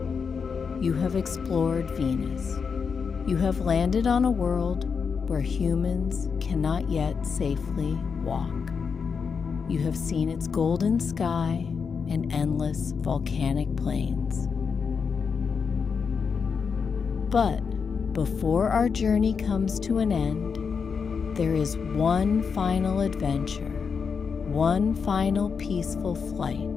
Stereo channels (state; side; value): quieter; right; 5.9 dB